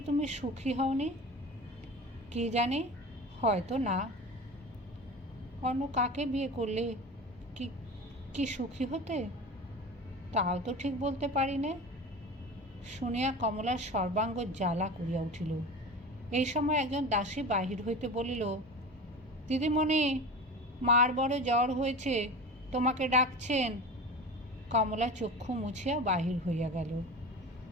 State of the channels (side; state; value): both; normal; correlation 0.32